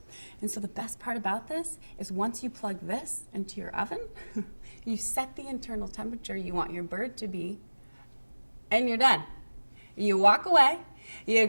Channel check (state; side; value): inverted; both; correlation -1.00